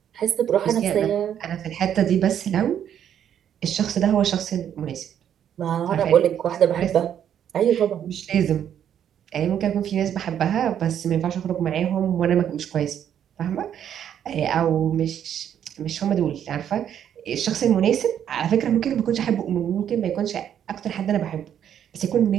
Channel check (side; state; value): left; quieter; 9.5 dB